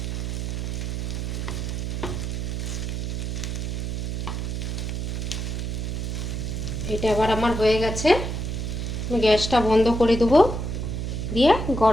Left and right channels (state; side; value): noise; right; hum, 3 dB below the sound